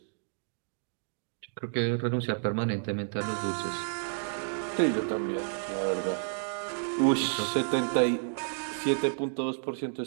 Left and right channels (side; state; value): left; silent; digital silence